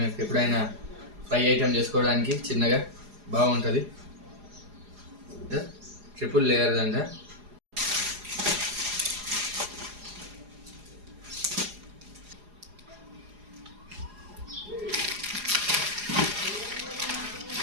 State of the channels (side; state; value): left; late; 4.8 ms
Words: ఎప్పుడైనా ఫ్రై ఐటమ్ చేసుకోవడానికి చిన్నగా బాగుంటుంది. ట్రిపుల్ లేయర్ అంట.